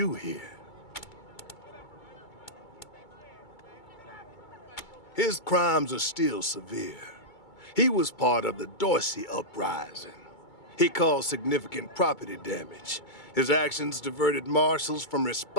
here? His crimes are still severe. He was part of the Dorsey uprising. He caused significant property damage. His actions diverted marshals from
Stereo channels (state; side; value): late; right; 2.2 ms